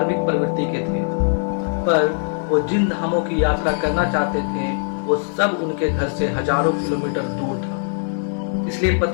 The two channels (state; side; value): silent; right; 62 dB below the other